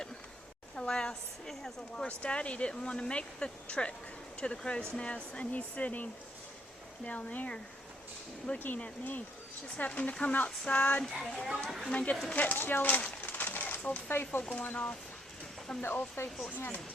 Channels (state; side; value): normal; both; correlation 0.70